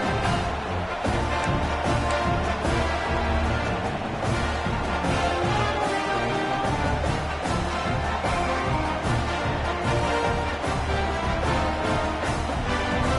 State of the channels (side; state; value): both; identical; correlation 1.00